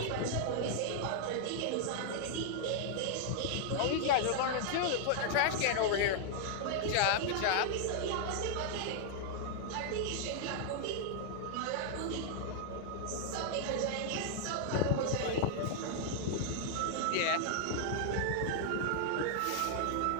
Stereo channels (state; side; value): different; both; correlation -0.01